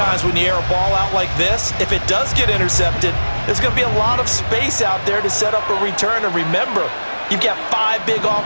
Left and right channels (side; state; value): both; inverted; correlation -1.00